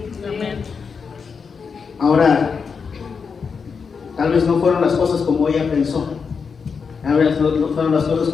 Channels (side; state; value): right; quieter; 5.7 dB